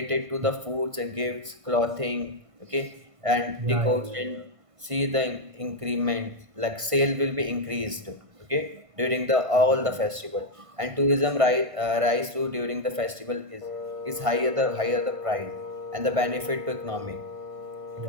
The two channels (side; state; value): left; late; 1.5 ms